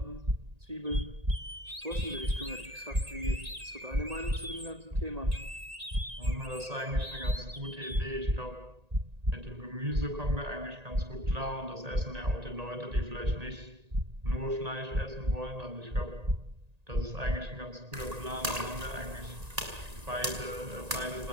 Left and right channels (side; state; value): left; late; 1.8 ms